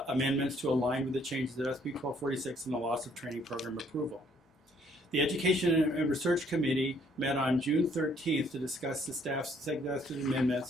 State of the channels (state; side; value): normal; both; correlation 0.64